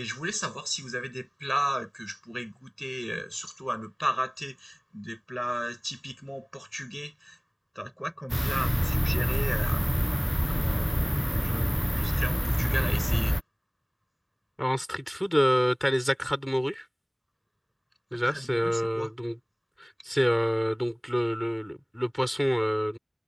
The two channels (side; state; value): both; identical; correlation 1.00